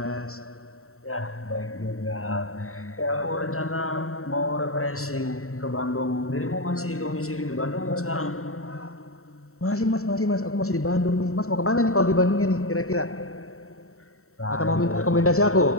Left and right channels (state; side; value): late; right; 0.63 ms